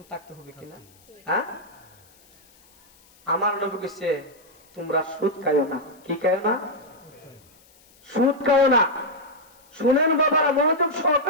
থাকতে হবে কিনা? হ্যাঁ, আমার নবী কইছে তোমরা সুদ খাইও না। কি খাইও না? সুদ খাইও না। শুনেন বাবারা, মনোযোগ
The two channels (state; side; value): noise; left; hiss, 29 dB below the sound